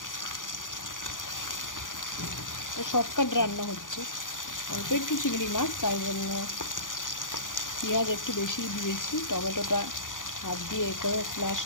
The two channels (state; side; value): late; right; 0.89 ms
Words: শর্টকাট রান্না হচ্ছে, অল্প একটু চিংড়ি মাছ, তাই জন্য পেঁয়াজ একটু বেশি দিয়েছি। টমেটোটা হাত দিয়ে করে স্ম্যাশ